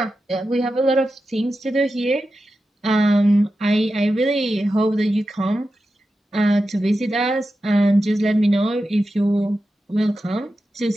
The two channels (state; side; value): normal; both; correlation 0.91